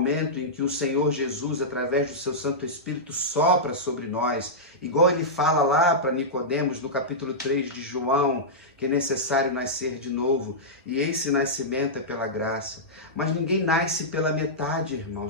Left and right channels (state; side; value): normal; both; correlation -0.12